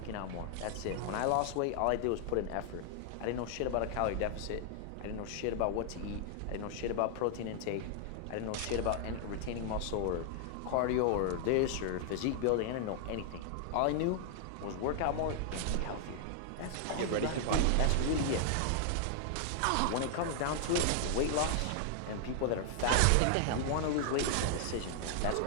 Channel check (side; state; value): both; different; correlation 0.00